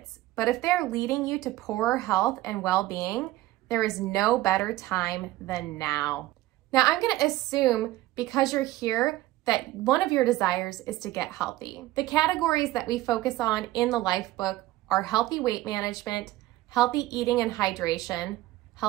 but if they're leading you to poorer health and well-being, there is no better time than now. Now, I'm going to assume because you're here that one of your desires is to get healthy. The categories that we focus on in the life book are healthy weight management, healthy eating and hydration,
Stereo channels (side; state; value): left; quieter; 16.7 dB